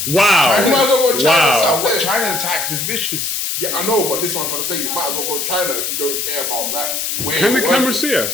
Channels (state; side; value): noise; left; hiss, 2 dB below the sound